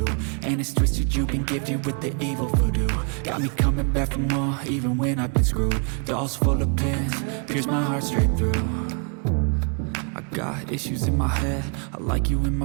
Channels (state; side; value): quieter; left; 38.7 dB